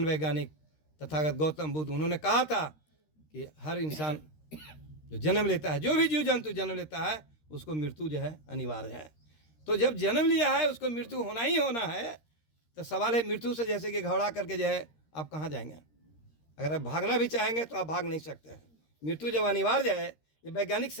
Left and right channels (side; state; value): right; late; 13 ms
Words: वैज्ञानिक तथागत गौतम बुद्ध, उन्होंने कहा था कि हर इंसान जो जन्म लेता है, जो भी जीव जंतु जन्म लेता है, उसको मृत्यु जो है अनिवार्य है। तो जब जन्म लिया है उसको मृत्यु होना ही होना है। तो सवाल है मृत्यु से जैसे कि घबरा करके जो है आप कहाँ जाएंगे? अगर आप भागना भी चाहेंगे तो आप भाग नहीं सकते हैं। मृत्यु जब अनिवार्य है, ये वैज्ञानिक